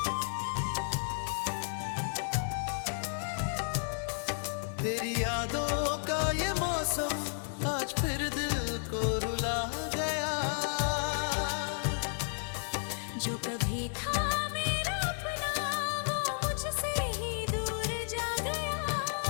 तेरी यादों का ये मौसम आज फिर दिल को रुला गया। जो कभी था मेरा अपना वो मुझसे ही दूर जा गया।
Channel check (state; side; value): silent; right; digital silence